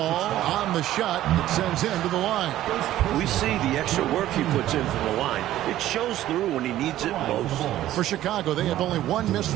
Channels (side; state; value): left; quieter; 13.7 dB